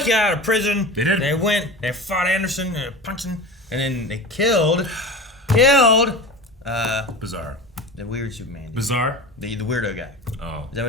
out of prison. They did. They fought Anderson, they punched him, and then they killed Bizarre. the weird Superman. Bizarre? The weirdo guy. Oh. Is that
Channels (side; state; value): both; normal; correlation 0.32